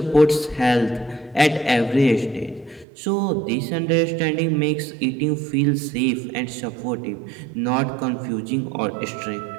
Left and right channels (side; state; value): left; drops out; at 2.9 s